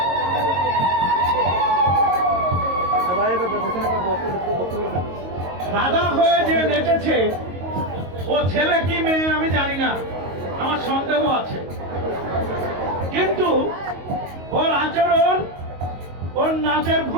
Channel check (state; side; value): late; left; 22 ms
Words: রাধা হয়ে যে নেচেছে, ও ছেলে কি মেয়ে আমি জানি না, আমার সন্দেহ আছে, কিন্তু ওর আচরণ, ওর নাচের